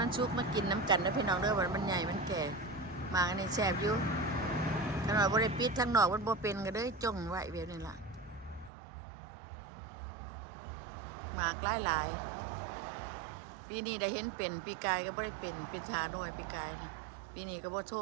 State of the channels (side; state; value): left; drops out; at 8.7 s